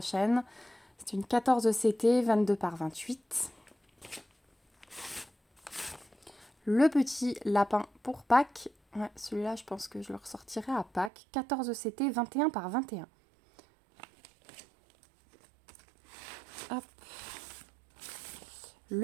C'est une 14 CT, 22 par 28. Le petit lapin pour Pâques. Ouais, celui-là, je pense que je le ressortirai à Pâques. 14 CT, 21 par 21. Hop.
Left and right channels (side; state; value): left; drops out; at 11.1 s